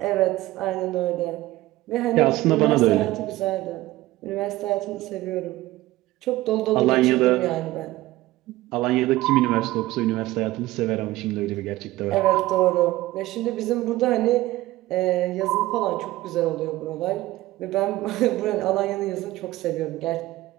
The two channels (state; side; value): quieter; left; 17.3 dB